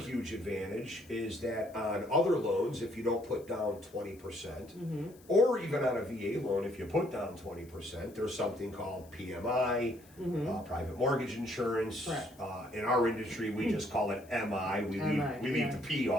advantage is that on other loans, if you don't put down 20%, or even on a VA loan, if you put down 20%, there's something called PMI, private mortgage insurance. Correct. In our industry, we just call it MI. We MI, leave yeah. the P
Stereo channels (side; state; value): left; noise; hiss, 26 dB below the sound